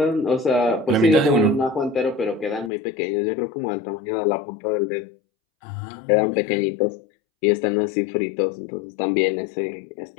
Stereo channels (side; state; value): right; drops out; at 2.7 s